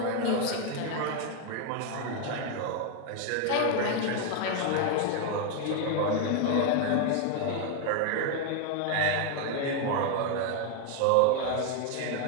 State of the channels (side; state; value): both; different; correlation 0.01